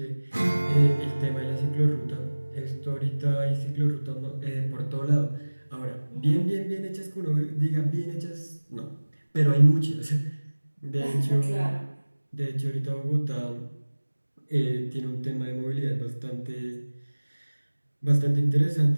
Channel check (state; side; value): inverted; both; correlation -1.00